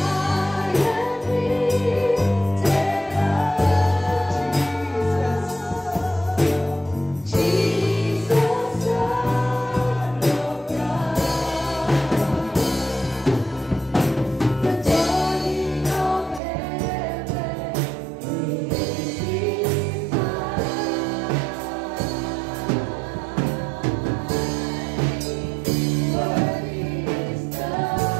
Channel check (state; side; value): drops out; left; at 16.4 s